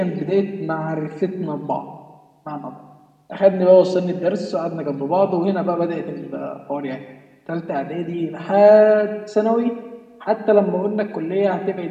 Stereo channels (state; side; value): identical; both; correlation 1.00